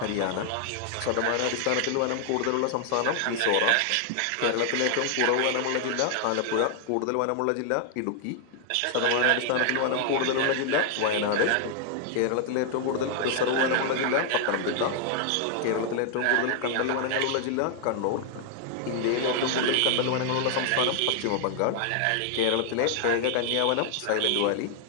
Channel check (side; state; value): both; different; correlation 0.00